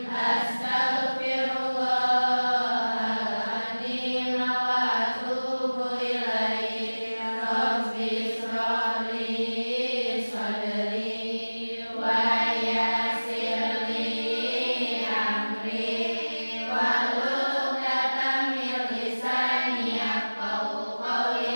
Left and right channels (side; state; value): both; inverted; correlation -1.00